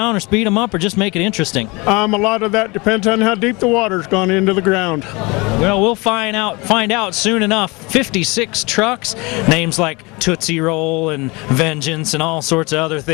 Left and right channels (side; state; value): right; quieter; 26.0 dB